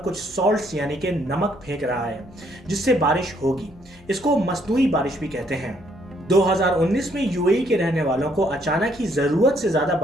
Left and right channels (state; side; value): noise; left; hum, 26 dB below the sound